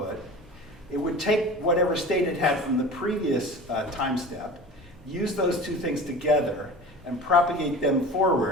it would take whatever state it had from the previous time step, use those two things together, and propagate them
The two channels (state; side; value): normal; both; correlation 0.36